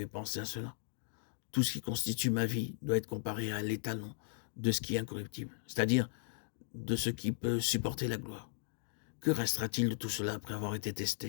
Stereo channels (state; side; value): silent; right; digital silence